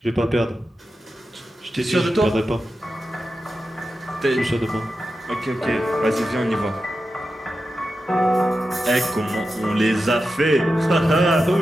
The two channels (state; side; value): normal; both; correlation 0.91